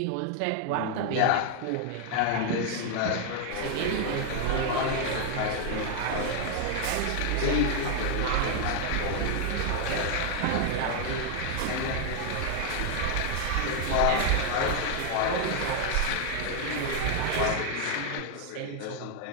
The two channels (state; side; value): different; both; correlation 0.00